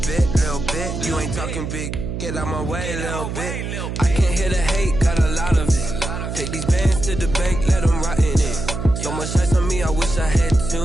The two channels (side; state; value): right; noise; hum, 5 dB below the sound